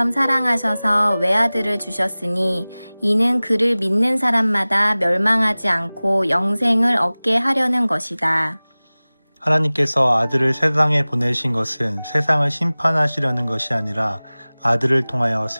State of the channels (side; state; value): both; inverted; correlation -0.99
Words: 사랑하셔서 외아들을 주셨으니 이는 그를 믿는 사람마다 멸망하지 않고 영생을 얻게 하려는 것이다. 하나님께서 아들을 세상에 보내신 것은 세상을 심판하시려는 것이 아니라 아들을 통하여